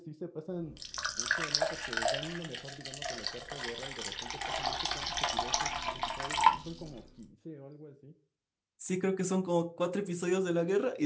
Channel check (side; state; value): both; identical; correlation 1.00